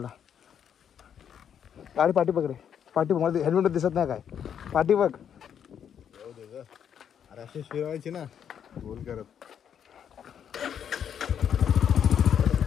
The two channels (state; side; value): quieter; right; 8.5 dB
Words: गाडी पाठी बघ रे, पाठी बघ. मला हेल्मेट दिसत नाही काय, पाठी बघ. अरे अशी फिरवायची ना गोल करत.